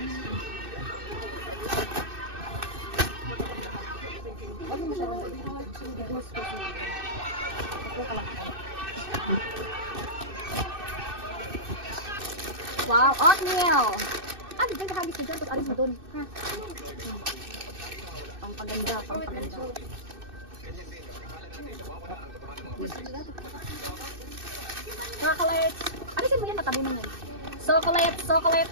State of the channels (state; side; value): late; left; 2.6 ms